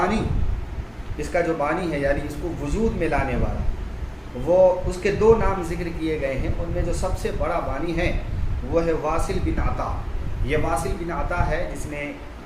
اس کا جو بانی ہے یعنی اس کو وجود میں لانے والا، وہ اس کے دو نام ذکر کیے گئے ہیں، ان میں جو سب سے بڑا بانی ہے وہ ہے واصل بن عطا۔ یہ واصل بن عطا ہے جس نے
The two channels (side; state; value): both; identical; correlation 1.00